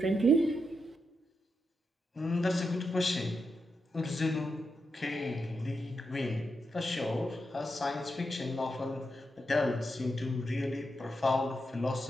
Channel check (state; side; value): normal; both; correlation 0.85